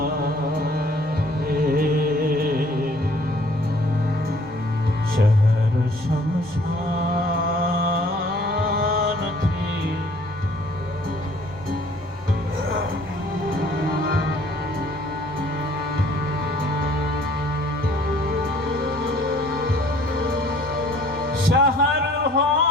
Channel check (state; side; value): noise; left; rumble, 29 dB below the sound